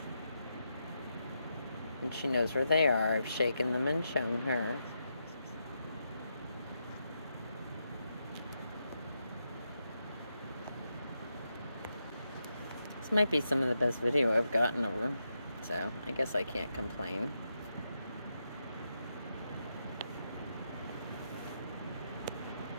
And she knows where they are. I've shaken them and shown her. This might be some of the best video I've gotten of her, so I guess I can't complain.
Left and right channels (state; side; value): inverted; both; correlation -0.84